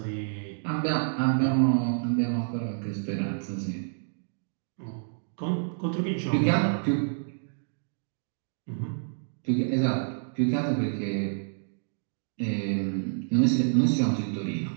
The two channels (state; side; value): silent; left; digital silence